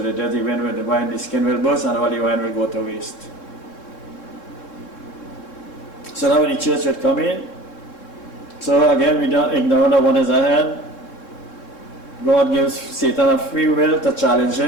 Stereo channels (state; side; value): late; right; 3.7 ms